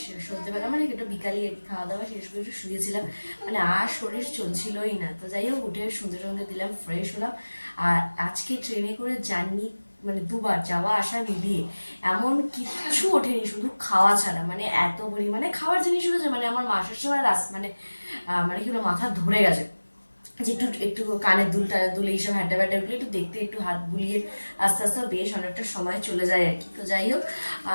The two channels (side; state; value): both; inverted; correlation -1.00